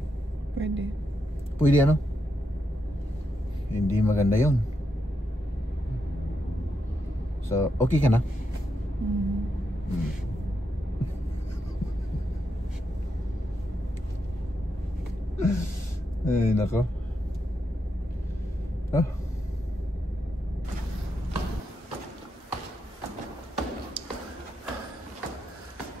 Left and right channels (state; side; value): normal; both; correlation 0.83